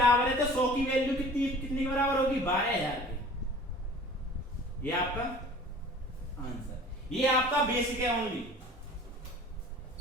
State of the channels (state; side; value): normal; both; correlation 0.45